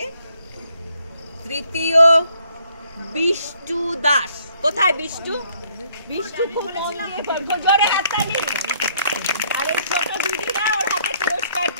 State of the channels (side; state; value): both; inverted; correlation -0.67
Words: বিষ্টু দাস। কোথায় বিষ্টু? বিষ্টু খুব মন দিয়ে পড়বে, জোরে হাততালি। আর এই ছোট দিদিরা ওর হাতে পুরস্কার